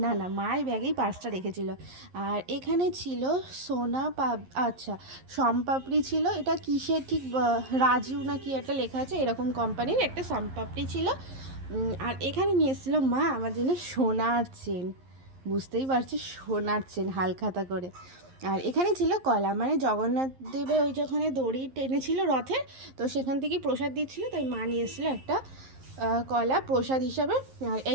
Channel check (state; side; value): late; left; 11 ms